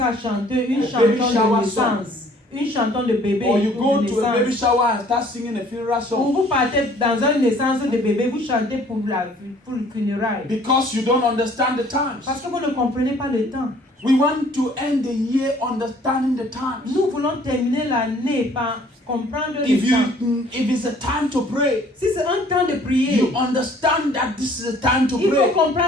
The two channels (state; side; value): normal; both; correlation 0.56